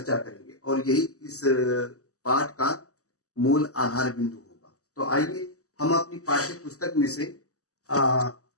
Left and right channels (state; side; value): late; right; 0.66 ms